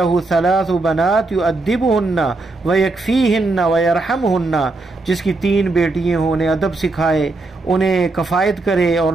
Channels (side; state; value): left; quieter; 3.2 dB